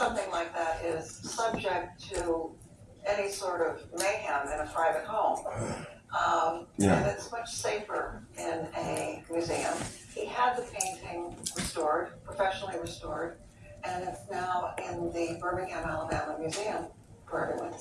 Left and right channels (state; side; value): identical; both; correlation 1.00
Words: like that is subject to any sort of mayhem in a private home. Yeah. And it's much safer in a museum. He had the painting restored, professionally restored, and it's now in the Birmingham, Alabama Museum for everyone to